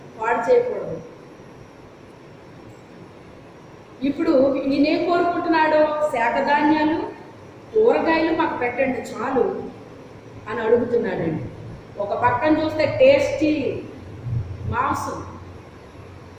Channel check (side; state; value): both; identical; correlation 1.00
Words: పాడు చేయకూడదు. ఇప్పుడు ఈయనేం కోరుకుంటున్నాడో, శాఖధాన్యాలు, కూరగాయలు మాకు పెట్టండి చాలు అని అడుగుతున్నాడండి. ఒక పక్కన చూస్తే టేస్టీ మాంసం